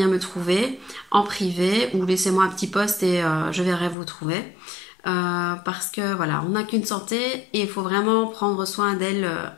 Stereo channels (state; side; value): drops out; right; at 4.0 s